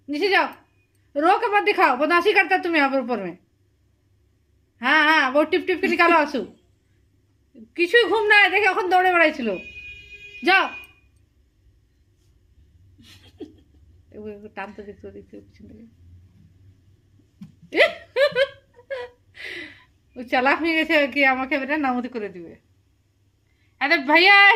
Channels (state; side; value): identical; both; correlation 1.00